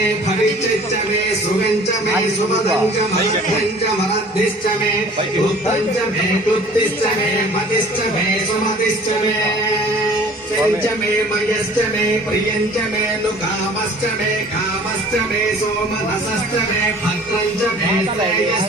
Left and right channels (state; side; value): normal; both; correlation 0.49